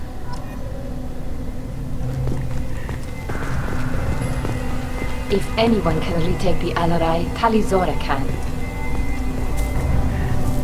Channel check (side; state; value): both; identical; correlation 1.00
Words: If anyone can retake the Alarai, Tali Zora can.